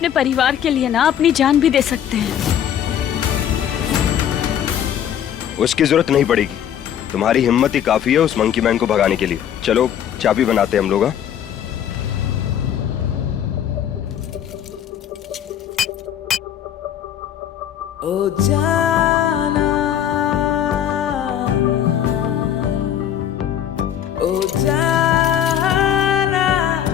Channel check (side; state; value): right; quieter; 9.8 dB